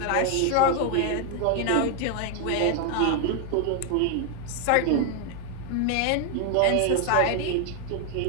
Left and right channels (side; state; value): both; different; correlation 0.00